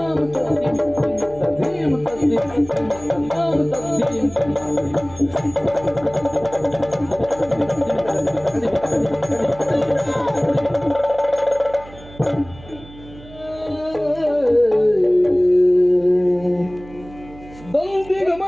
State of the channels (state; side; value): noise; right; hum, 19 dB below the sound